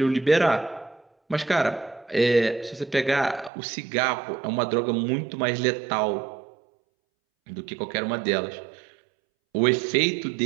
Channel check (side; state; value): left; drops out; at 3.5 s